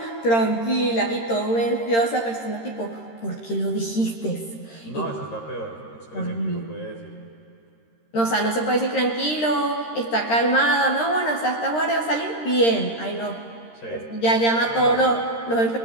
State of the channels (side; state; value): right; late; 13 ms